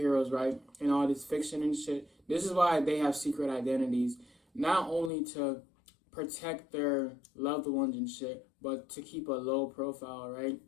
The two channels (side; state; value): right; drops out; at 5.1 s